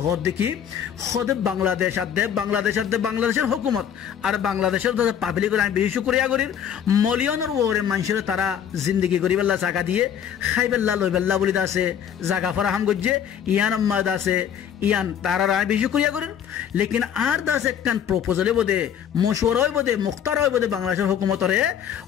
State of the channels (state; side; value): quieter; right; 8.9 dB